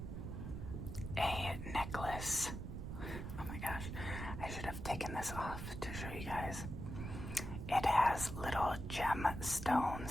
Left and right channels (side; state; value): right; noise; rumble, 6 dB below the sound